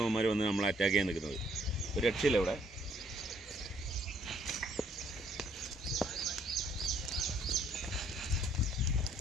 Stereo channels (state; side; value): normal; both; correlation 0.65